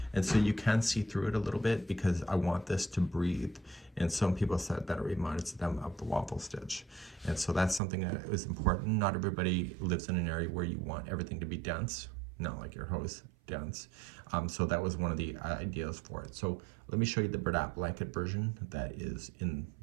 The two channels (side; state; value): left; drops out; at 7.8 s